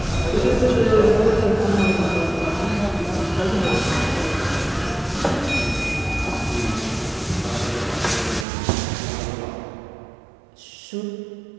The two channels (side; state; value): left; drops out; at 8.5 s